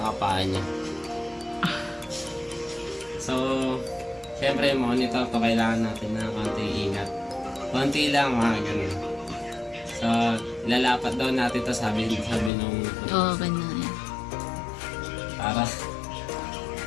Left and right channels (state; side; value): drops out; right; at 12.5 s